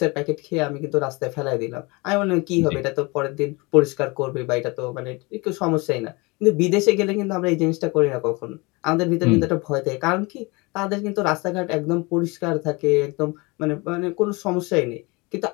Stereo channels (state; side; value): quieter; right; 26.0 dB